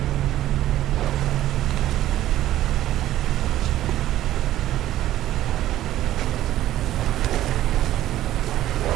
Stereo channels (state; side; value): quieter; left; 13.6 dB